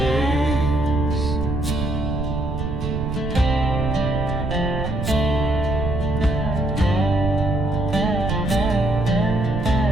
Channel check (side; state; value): right; noise; rumble, 4 dB below the sound